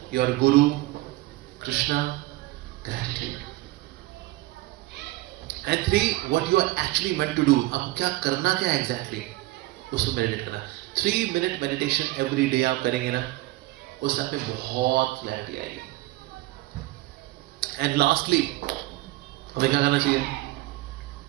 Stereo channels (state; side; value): quieter; left; 19.1 dB